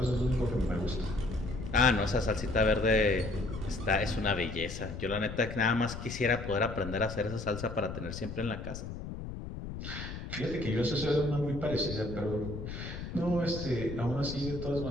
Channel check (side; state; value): left; noise; rumble, 8 dB below the sound